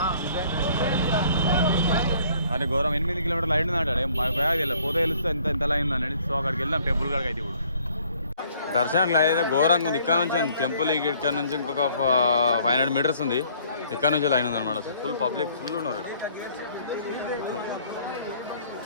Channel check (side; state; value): both; inverted; correlation -0.60